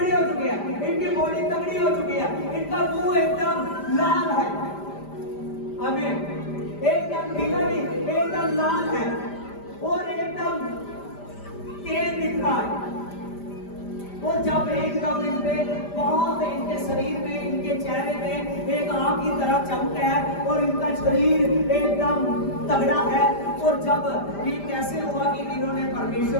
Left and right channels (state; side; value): late; right; 5.0 ms